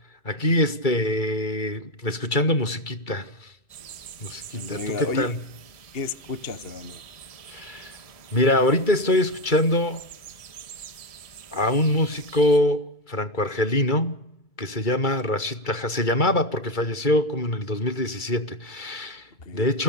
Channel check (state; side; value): late; right; 2.3 ms